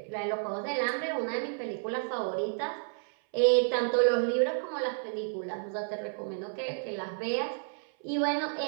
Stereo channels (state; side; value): silent; left; 57 dB below the other